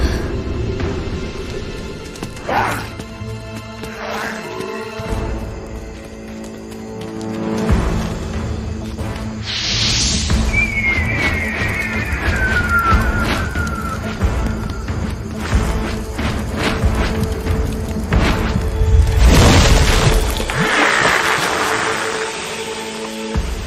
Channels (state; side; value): identical; both; correlation 1.00